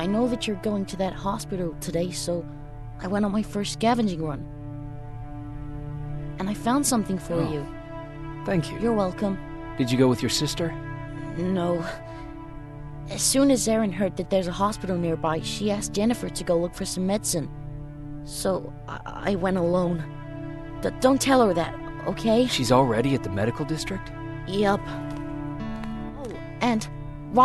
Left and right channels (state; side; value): identical; both; correlation 1.00